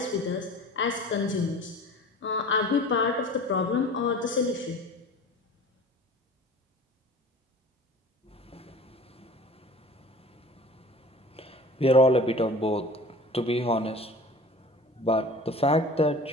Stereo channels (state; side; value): normal; both; correlation 0.42